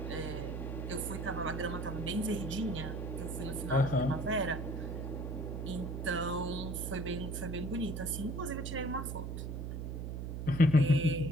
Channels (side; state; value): right; noise; hum, 4 dB below the sound